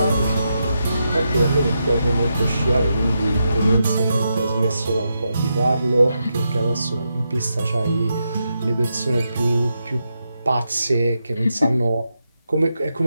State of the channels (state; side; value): inverted; both; correlation -0.85